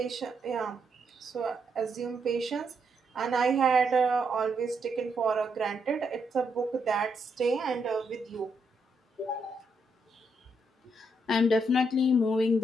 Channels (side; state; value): both; normal; correlation 0.78